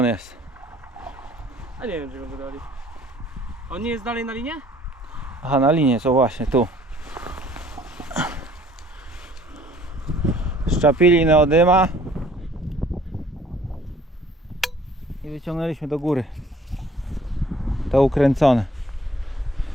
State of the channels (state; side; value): normal; both; correlation 0.56